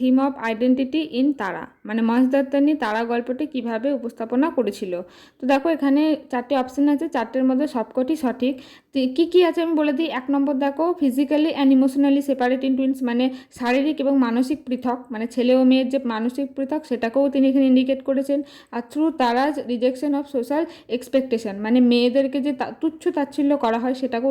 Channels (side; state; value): both; identical; correlation 1.00